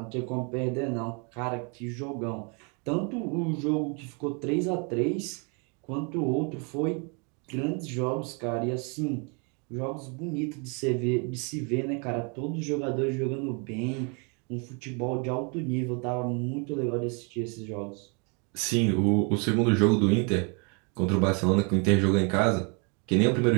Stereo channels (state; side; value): quieter; left; 34.9 dB